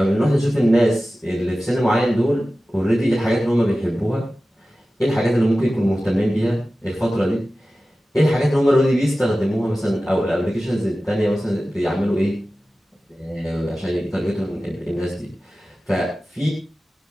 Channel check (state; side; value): normal; both; correlation 0.95